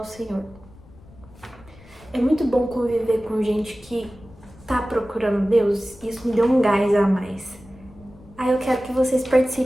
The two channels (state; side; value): noise; left; rumble, 23 dB below the sound